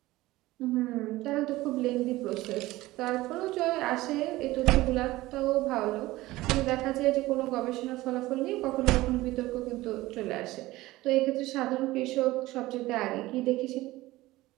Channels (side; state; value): left; quieter; 18.1 dB